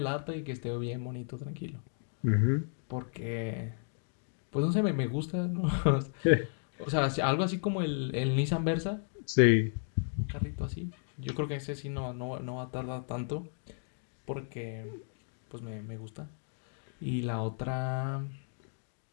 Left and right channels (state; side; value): silent; right; digital silence